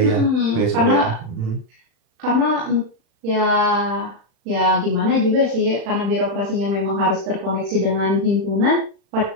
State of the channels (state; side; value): late; left; 36 ms